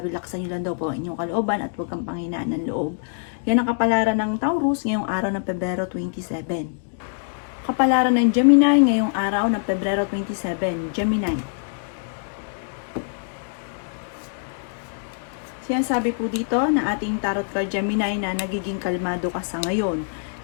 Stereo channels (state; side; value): silent; right; digital silence